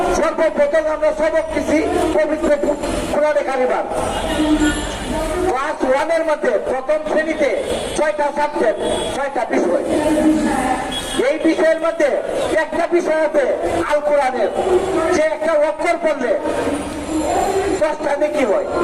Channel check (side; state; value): both; identical; correlation 1.00